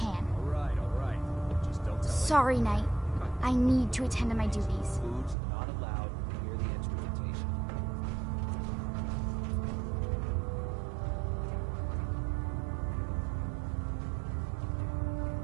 Alright. Just don't tell Sorry, Knight. I need to attend to my duties. Foods not allowed near the instrumentation.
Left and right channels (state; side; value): drops out; left; at 5.4 s